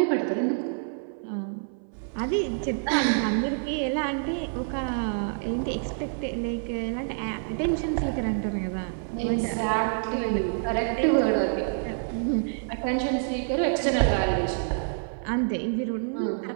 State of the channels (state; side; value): silent; left; 60 dB below the other